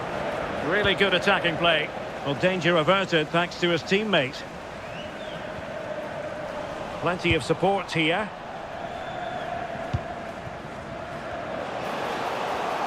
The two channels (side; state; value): both; identical; correlation 1.00